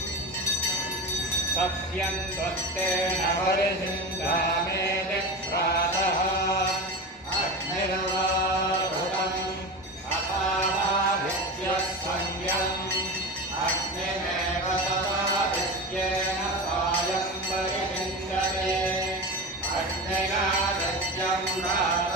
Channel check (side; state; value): both; normal; correlation 0.26